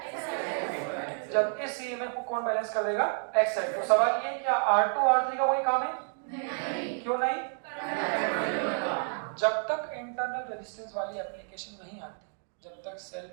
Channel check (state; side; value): silent; left; 58 dB below the other